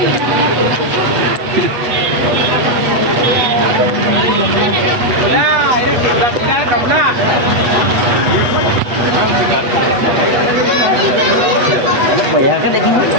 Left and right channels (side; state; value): left; late; 8.3 ms